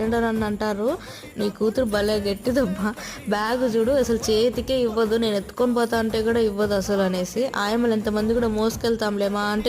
అని అంటారు, నీ కూతురు భలే గట్టిదబ్బా, బ్యాగ్ చూడు అసలు చేతికే ఇవ్వదు, నేను ఎత్తుకొని పోతా అంటే కూడా ఇవ్వదు అసలు అనేసి. ఆయమ్మలు ఎంతమంది కూడా మోసుకెళ్తాంలేమా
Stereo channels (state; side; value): identical; both; correlation 1.00